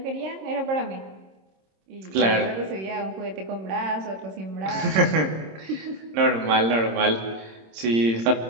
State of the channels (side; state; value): left; late; 26 ms